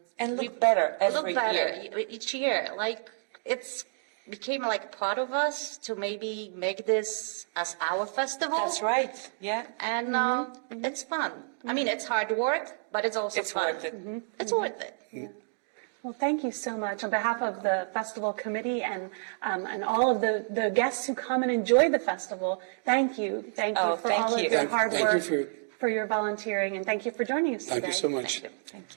look better every year. Each year. It's became like part of us to maybe make this as our festival. That's right, yeah. And it's fun. It's hard work, but it's also fun. Worth it. It's worth it. Yeah. Well, thank you so much. On behalf of the festival committee and all of the guests who come and enjoy the festival, thank you. Thank you for all of your hard work, for your volunteering, and thank you for joining us today. Thank you so much. Thank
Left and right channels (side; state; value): left; silent; digital silence